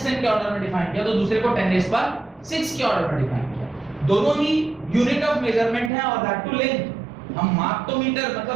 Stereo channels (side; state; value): left; drops out; at 5.9 s